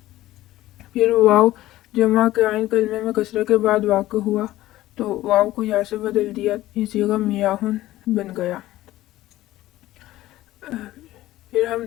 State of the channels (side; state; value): right; quieter; 15.7 dB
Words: پھر واو جمع کے عین کلمے میں کسرہ کے بعد واقع ہوا تو واو کو یا سے بدل دیا، یہ صیغہ میاہن بن گیا۔ پھر ہم